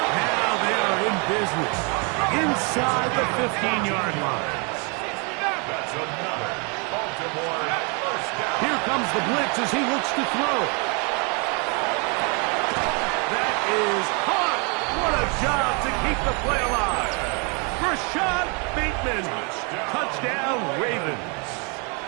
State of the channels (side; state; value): left; quieter; 34.0 dB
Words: Now they are in business inside the 15-yard line. That's another Baltimore first down. Here comes the blitz as he looks to throw. That is caught. What a job to keep the play alive. Rashad Bateman. Touchdown, Ravens.